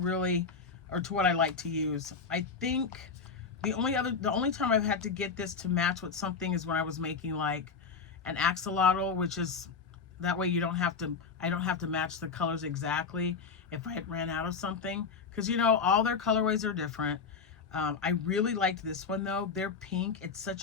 or to what I like to use. I think the only time I've had to get this to match with something is when I was making like an axolotl, which is that way I don't have to match the colors exactly if I had ran out of something, because you know all their colorways are different. I really liked this one though. They're pink. It's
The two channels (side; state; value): right; quieter; 5.4 dB